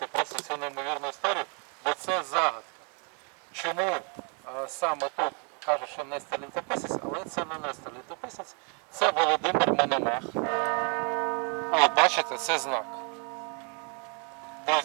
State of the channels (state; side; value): quieter; left; 38.2 dB